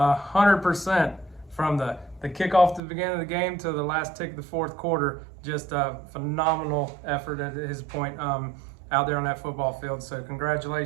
from the kickoff to the beginning of the game to the last tick of the fourth quarter. Just a phenomenal effort at his point out there on that football field. So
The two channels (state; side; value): drops out; left; at 2.8 s